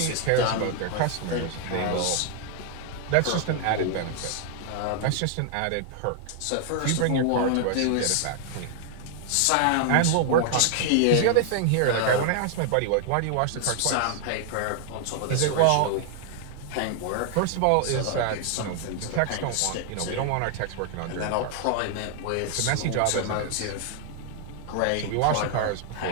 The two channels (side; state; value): both; different; correlation 0.00